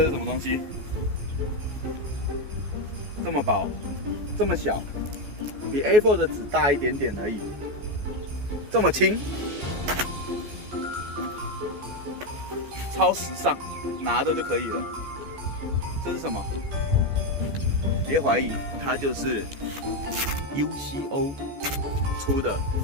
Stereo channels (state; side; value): late; left; 14 ms